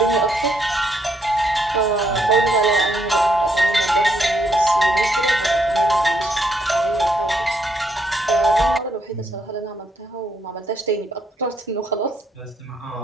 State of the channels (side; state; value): both; normal; correlation 0.74